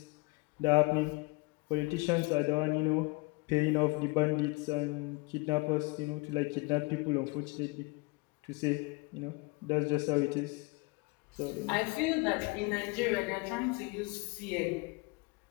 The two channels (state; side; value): quieter; right; 27.5 dB